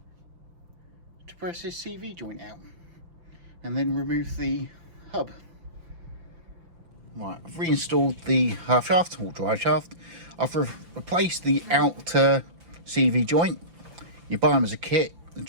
to press this CV joint out and then remove the hub. Right, I've reinstalled the half shaft or drive shaft. I've replaced the outer CV joint. You buy them as a kit: the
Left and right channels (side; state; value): left; late; 5.9 ms